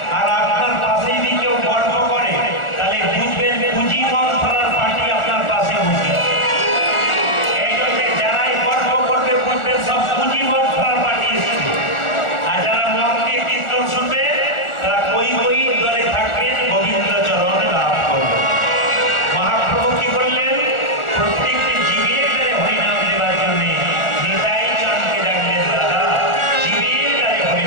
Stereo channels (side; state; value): right; late; 1.4 ms